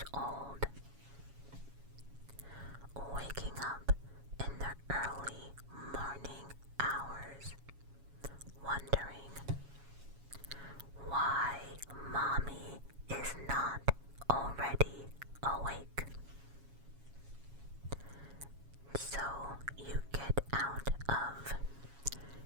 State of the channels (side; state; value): left; late; 7.2 ms